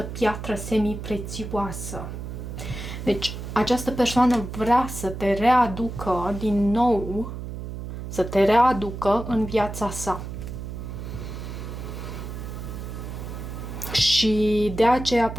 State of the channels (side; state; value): right; noise; hum, 8 dB below the sound